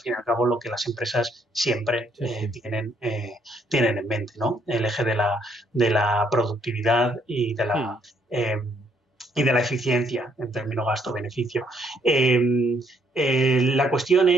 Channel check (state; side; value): normal; both; correlation 0.69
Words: y al cabo lo que las empresas siempre tienen en mente, ¿no? El eje de la productividad y de la eficiencia en términos gasto-beneficio. La cuestión